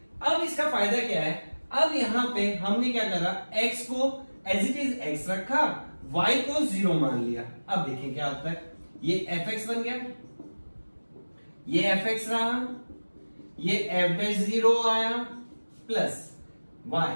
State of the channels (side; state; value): both; inverted; correlation -1.00